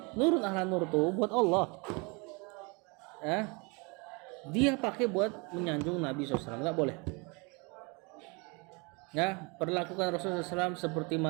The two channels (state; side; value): quieter; left; 29.9 dB